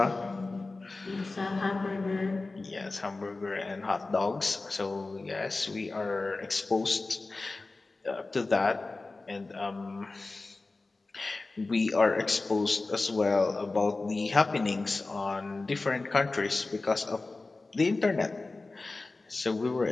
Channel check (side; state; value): right; quieter; 3.4 dB